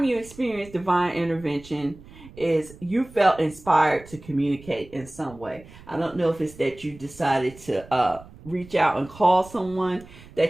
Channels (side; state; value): right; noise; rumble, 20 dB below the sound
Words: you experienced divine intervention is you felt inspired to communicate in some way. I don't know if it's that you decided to reach out and call someone